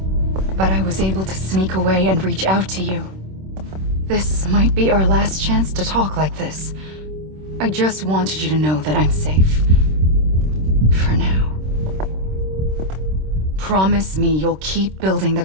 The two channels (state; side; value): late; left; 26 ms